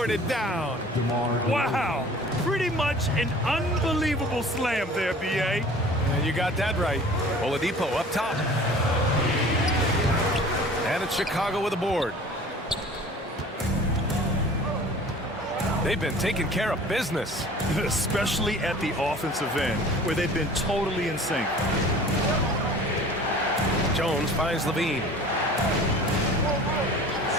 it down. Wow, pretty much an unbelievable slam there, B.A. And you got that right. Oladipo up top. And it's Chicago with a board. They've been taking care of business. Especially at the offensive end, where they've been totally in sync. Jones finds Levine.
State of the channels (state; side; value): normal; both; correlation 0.45